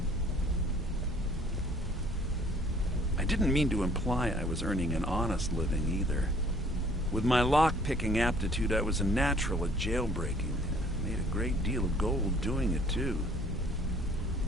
I didn't mean to imply I was earning an honest living either. With my lock-picking aptitude, I was a natural at jailbreaking. I made a great deal of gold doing it, too.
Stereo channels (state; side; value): normal; both; correlation 0.57